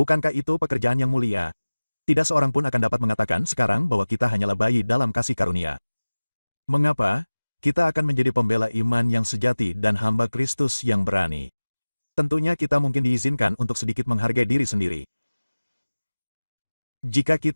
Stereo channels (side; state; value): both; inverted; correlation -1.00